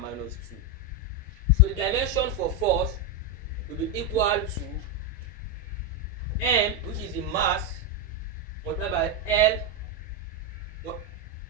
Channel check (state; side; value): normal; both; correlation 0.05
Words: minus 2. So the dimension for force will be equal to m, which is the mass, multiplied by L